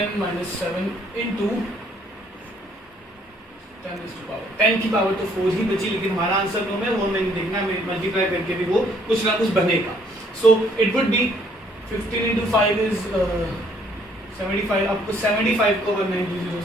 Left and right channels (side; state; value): both; normal; correlation 0.64